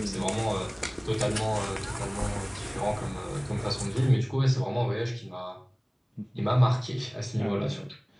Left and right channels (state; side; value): identical; both; correlation 1.00